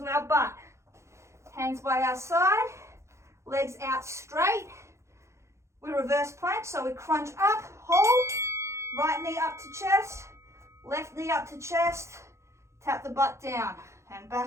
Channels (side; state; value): left; late; 0.14 ms